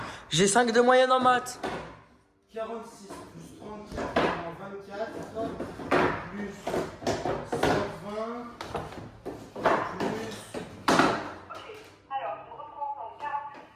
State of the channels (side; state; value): both; identical; correlation 1.00